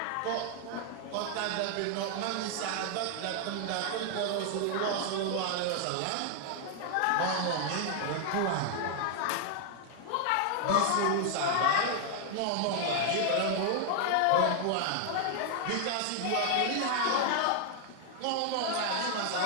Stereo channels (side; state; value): both; different; correlation 0.00